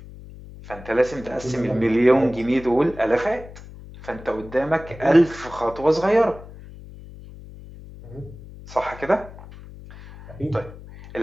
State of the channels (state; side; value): noise; left; hum, 17 dB below the sound